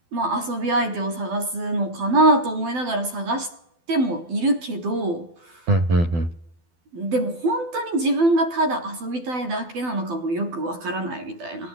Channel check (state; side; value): late; left; 12 ms